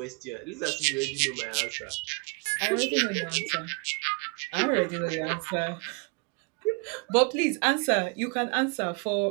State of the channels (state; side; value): quieter; left; 30.4 dB